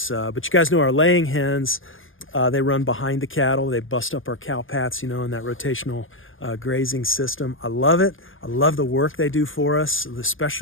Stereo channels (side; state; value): right; late; 0.58 ms